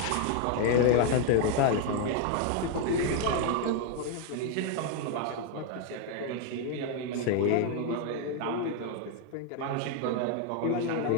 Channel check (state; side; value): different; both; correlation 0.01